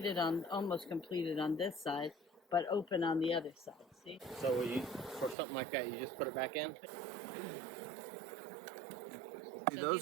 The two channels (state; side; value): drops out; left; at 5.4 s